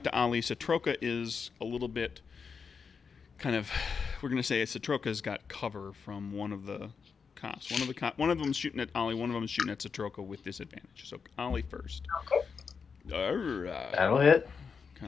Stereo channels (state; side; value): quieter; right; 5.7 dB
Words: to Ollie. Satroka is a little bit kind of. We're gonna say Satroka's got cover from one of the cops. One of them's shooting at Ollie. One of them is shooting at Satroka with disadvantage. So Ollie first. Okay. All right. That'll hit.